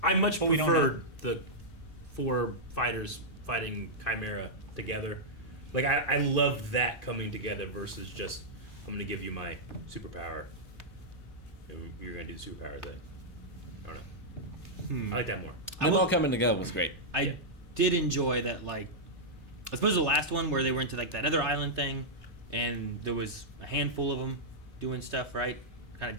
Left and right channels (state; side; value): normal; both; correlation -0.08